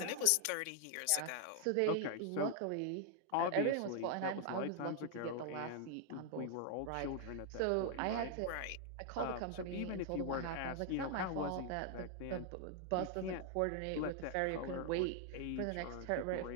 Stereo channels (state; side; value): different; both; correlation 0.00